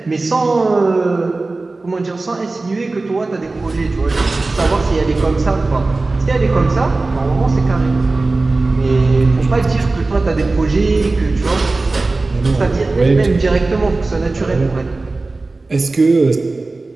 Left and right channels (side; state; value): left; quieter; 3.4 dB